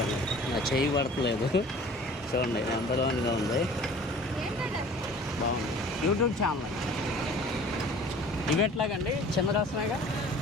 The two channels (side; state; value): both; normal; correlation 0.47